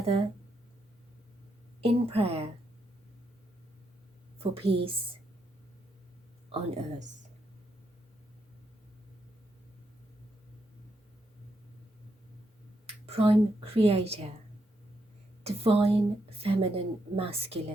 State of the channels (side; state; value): both; normal; correlation 0.80